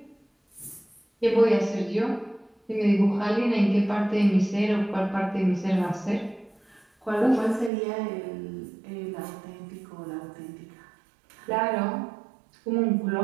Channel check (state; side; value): drops out; left; at 7.7 s